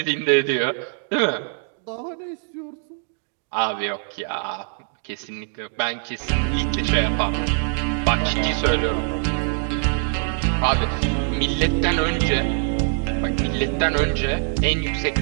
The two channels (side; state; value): left; silent; 58 dB below the other